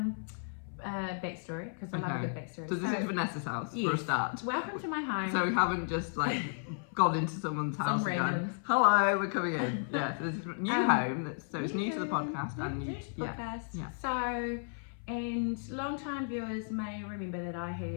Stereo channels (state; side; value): silent; right; 55 dB below the other